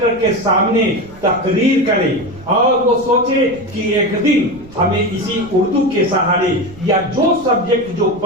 के सामने तकरीर करें और वो सोचे कि एक दिन हमें इसी उर्दू के सहारे या जो सब्जेक्ट जो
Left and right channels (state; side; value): noise; right; rumble, 21 dB below the sound